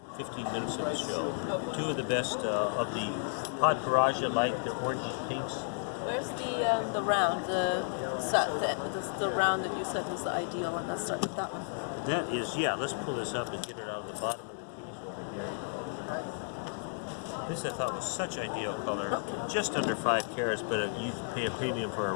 15 minutes of the show. Two of the best of the Pod Paraja, like the orange pinks. Where's the round, the round that you said was the ideal one? Let's start with that one. That is, yeah, let's pull this up and get it out of the bottom of the piece over here. This I thought was such ideal color. Just under 5 carats, but you pay a premium for a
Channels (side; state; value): right; silent; digital silence